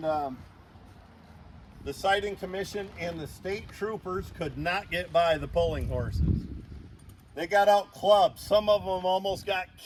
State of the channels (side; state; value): both; identical; correlation 1.00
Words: the siting commission and the state troopers could not get by the pulling horses. They got out clubbed. Some of them almost got